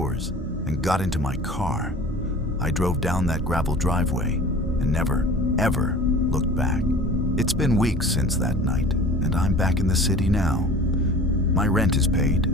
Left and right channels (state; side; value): normal; both; correlation 0.42